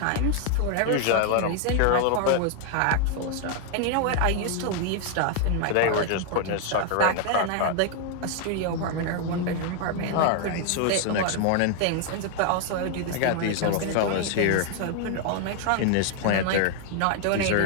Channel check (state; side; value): different; both; correlation 0.00